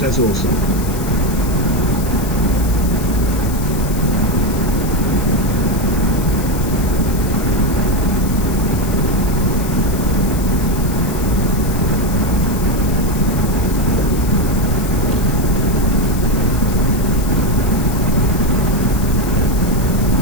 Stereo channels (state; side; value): noise; left; hiss, 12 dB below the sound